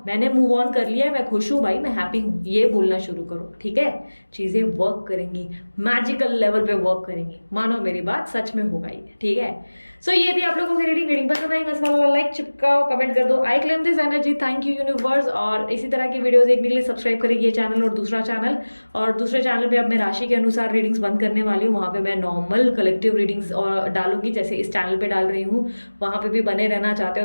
मैंने मूव ऑन कर लिया है, मैं खुश हूं भाई, मैं हैप्पी हूं, ये बोलना शुरू करो, ठीक है। चीजें वर्क करेंगी, मैजिकल लेवल पे वर्क करेंगी, मानो मेरी बात सच में होगा ये, ठीक है। सो ये थी आप लोगों की रीडिंग पसंद आई मस्त वाला लाइक चिपकाओ, कमेंट कर दो, I claim this energy, thank you universe. और इसी तरह की वीडियोस देखने के लिए सब्सक्राइब करेगी ये चैनल और दूसरा चैनल, और दूसरे चैनल पे अब मैं राशि के अनुसार रीडिंग्स बंद करने वाली हूँ, वहाँ पे मैं नॉर्मल कलेक्टिव रीडिंग्स और डालूंगी जैसे इस चैनल पे डाल रही हूँ, वहाँ पे भी बने रहना चाहते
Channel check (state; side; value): inverted; both; correlation -1.00